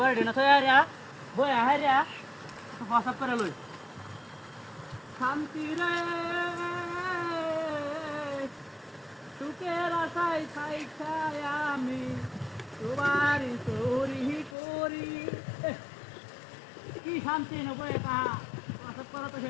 না থয়া রিয়া বই আহে রিয়া প্রসাব করে লই শান্তি রে সুখের আশায় ছাই ছাই আমি সবারই চোরি করি কি শান্তি নবই তাহা প্রসাব করা তো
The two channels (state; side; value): drops out; right; at 14.6 s